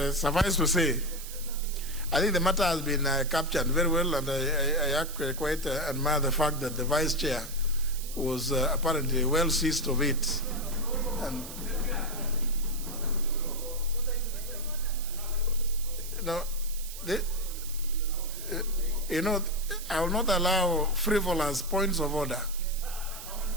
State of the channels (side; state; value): right; noise; hiss, 12 dB below the sound